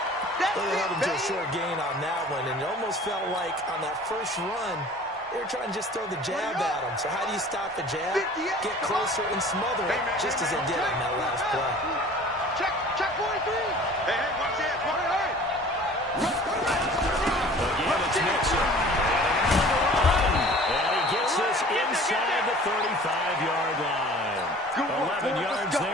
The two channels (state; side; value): normal; both; correlation 0.46